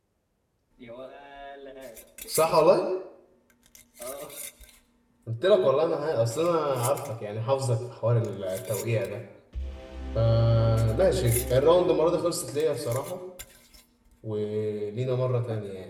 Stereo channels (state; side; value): identical; both; correlation 1.00